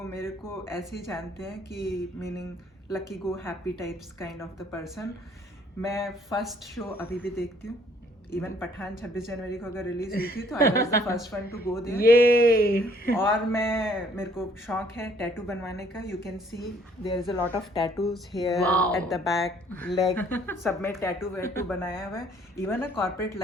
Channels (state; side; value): normal; both; correlation 0.62